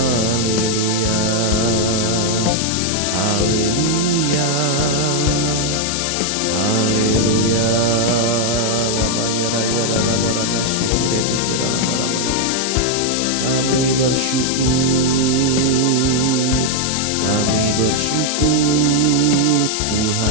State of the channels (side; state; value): left; noise; hiss, 2 dB below the sound